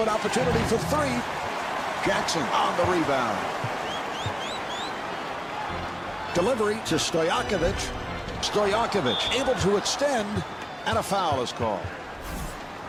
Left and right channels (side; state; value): both; identical; correlation 1.00